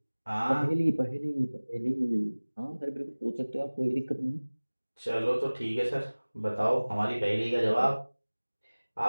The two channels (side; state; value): both; inverted; correlation -1.00